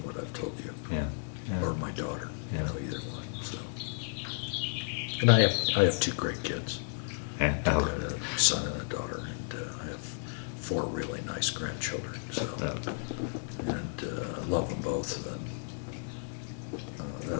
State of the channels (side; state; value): right; silent; digital silence